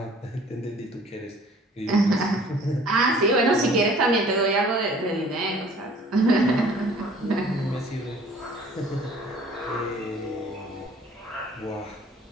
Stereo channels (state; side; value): normal; both; correlation 0.52